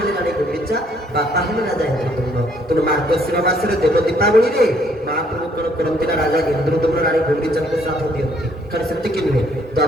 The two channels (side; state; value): both; normal; correlation 0.66